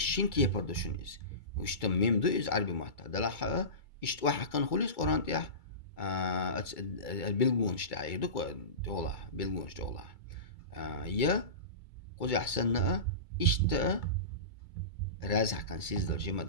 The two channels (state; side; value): late; right; 2.3 ms